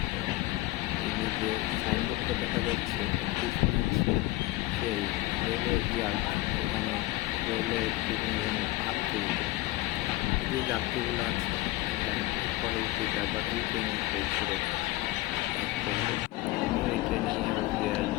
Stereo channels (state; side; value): quieter; right; 18.7 dB